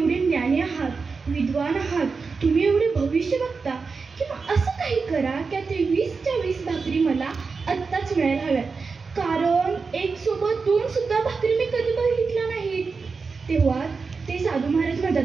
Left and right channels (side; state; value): left; quieter; 4.7 dB